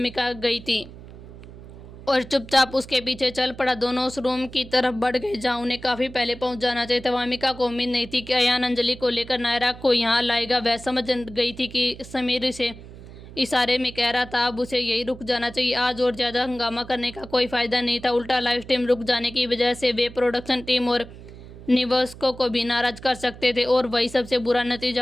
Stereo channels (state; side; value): noise; right; hum, 16 dB below the sound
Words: गई थी और चुपचाप उसके पीछे चल पड़ा। दोनों उस रूम की तरफ बढ़ गए जहाँ उन्हें काफ़ी पहले पहुंच जाना चाहिए था। वामिका को उम्मीद नहीं थी कि अयान अंजलि को लेकर नायरा को यहाँ लाएगा। वह समझ गई थी कि समीर से इशारे में कह रहा था अब उसे यही रुक जाना चाहिए। आज और ज़्यादा हंगामा करने का कोई फ़ायदा नहीं था। उल्टा लाइव स्ट्रीम रुक जाने की वजह से वे प्रोडक्शन टीम और निवासकों को भी नाराज़ कर सकते थे और वही सबसे बुरा